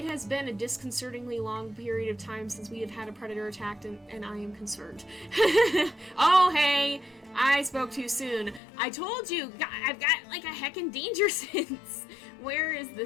has been a disconcertingly long period of time since we have had a predator attacked, and I am concerned. Oh, hey! I spoke too soon. I told you! I've got, like, a heckin' danger sense! Where is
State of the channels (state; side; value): drops out; right; at 8.6 s